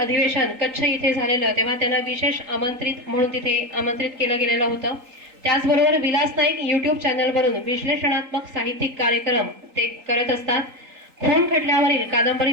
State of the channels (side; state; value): left; late; 3.9 ms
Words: कच्छ इथे झालेलं तेव्हा त्यांना विशेष आमंत्रित म्हणून तिथे आमंत्रित केलं गेलेलं होतं. त्याचबरोबर विलास नाईक YouTube चॅनलवरून विश्लेषणात्मक साहित्यिक कार्यक्रम ते करत असतात. खून खटल्यावरील